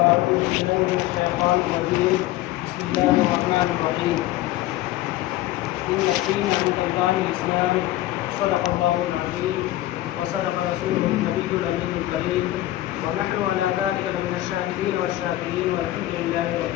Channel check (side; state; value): right; quieter; 15.8 dB